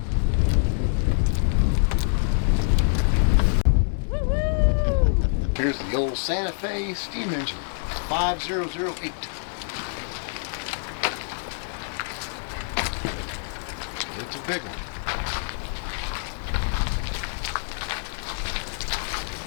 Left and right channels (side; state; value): right; silent; 61 dB below the other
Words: Here's the old Santa Fe steam engine, 5008. It's a big one.